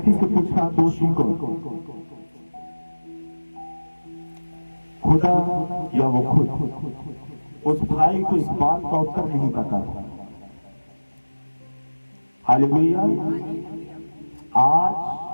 से पूछा, दोषी को खुदा या वो खुद? उस भाई को इस बात का उत्तर नहीं पता। हालेलुया। आज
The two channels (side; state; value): both; inverted; correlation -1.00